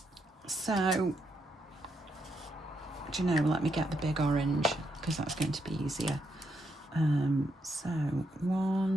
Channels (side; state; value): both; normal; correlation 0.79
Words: So, do you know, let me get the big orange, because that's going to be easier. So